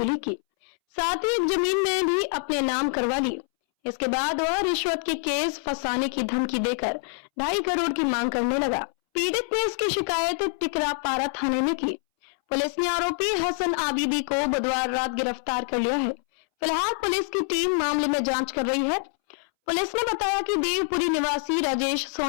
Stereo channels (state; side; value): silent; right; 61 dB below the other